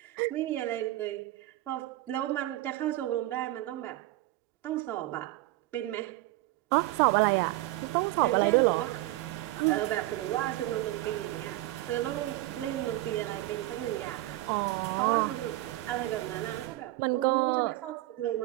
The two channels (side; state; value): left; quieter; 17.2 dB